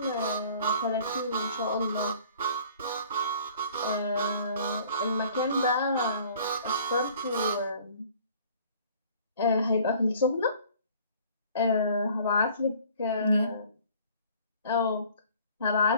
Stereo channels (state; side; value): inverted; both; correlation -0.52